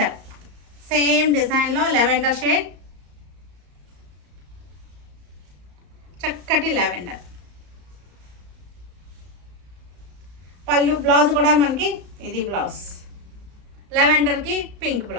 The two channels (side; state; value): left; late; 34 ms